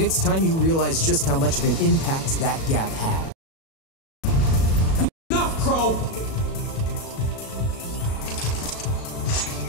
it's time you realize just how much of an impact that gap had. Enough, Crow!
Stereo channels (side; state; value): right; late; 37 ms